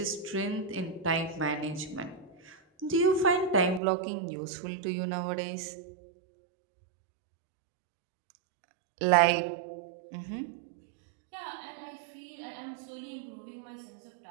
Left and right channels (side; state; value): left; drops out; at 3.8 s